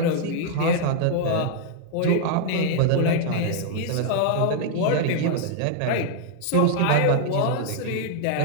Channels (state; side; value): different; both; correlation 0.00